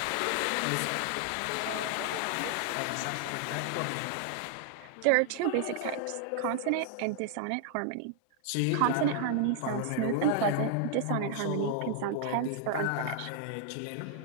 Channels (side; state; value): both; different; correlation 0.00